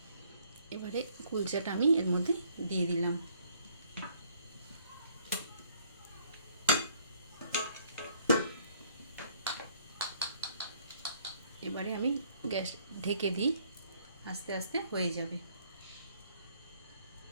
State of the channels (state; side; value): inverted; both; correlation -0.63